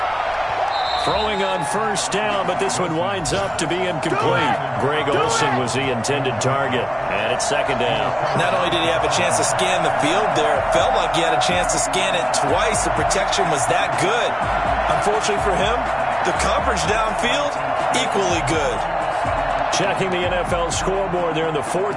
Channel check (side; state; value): both; identical; correlation 1.00